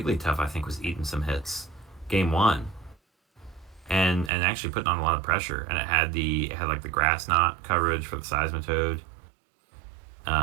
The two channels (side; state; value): left; drops out; at 4.3 s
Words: I think, was eating some hits game 1, and actually putting on a lot of pressure. And it had like the grass knot coverage for the Seismitoad.